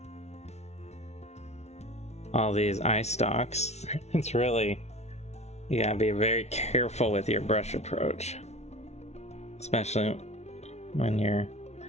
All these eye stalks. It's really, you gotta be very careful with your brush approach, especially when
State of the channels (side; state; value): right; late; 0.32 ms